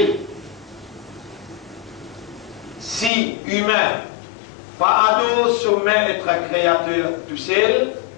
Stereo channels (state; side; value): drops out; right; at 3.1 s